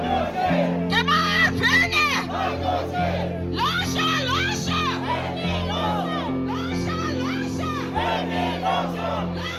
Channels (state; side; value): identical; both; correlation 1.00